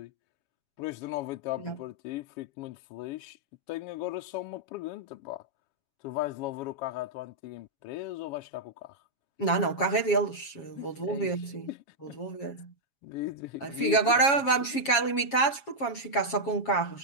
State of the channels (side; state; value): right; late; 7.2 ms